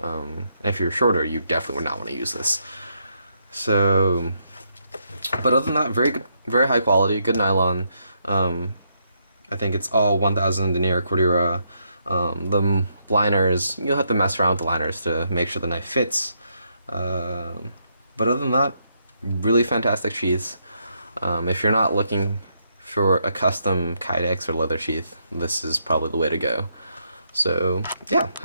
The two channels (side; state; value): both; inverted; correlation -0.78